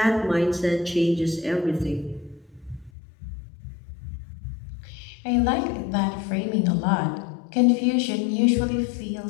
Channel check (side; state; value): right; drops out; at 2.9 s